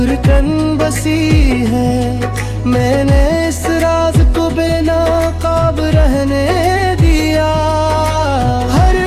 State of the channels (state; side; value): identical; both; correlation 1.00